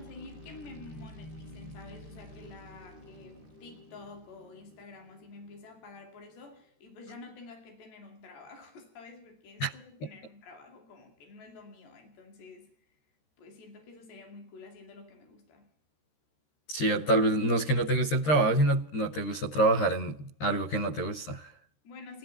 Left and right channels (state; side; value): late; right; 13 ms